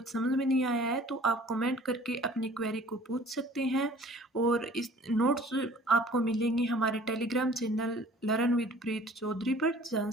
समझ में नहीं आया है तो आप कमेंट करके अपनी क्वेरी को पूछ सकते हैं। और इस नोट्स आपको मिलेंगे हमारे टेलीग्राम चैनल लर्न विद प्रीत चौधरी पर, जहाँ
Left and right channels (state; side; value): normal; both; correlation 0.50